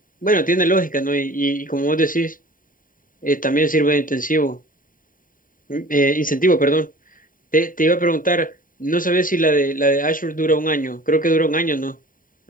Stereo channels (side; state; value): right; late; 0.40 ms